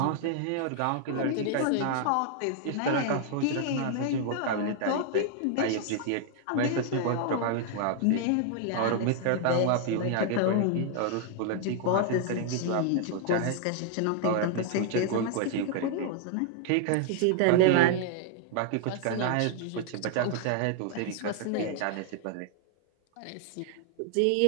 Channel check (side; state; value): both; different; correlation 0.00